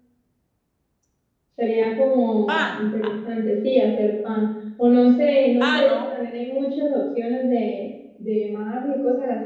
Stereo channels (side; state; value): both; identical; correlation 1.00